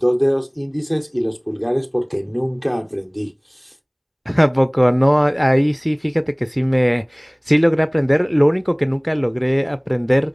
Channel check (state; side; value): identical; both; correlation 1.00